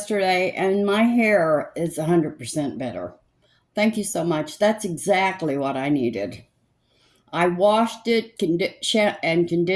and my hair is 100% better. Thank you so much. That's exactly what I needed. I washed it and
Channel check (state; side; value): identical; both; correlation 1.00